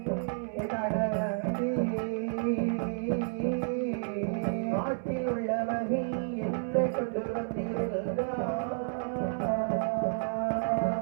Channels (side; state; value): left; silent; 57 dB below the other